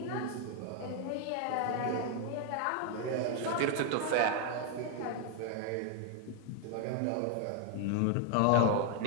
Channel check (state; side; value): different; both; correlation 0.00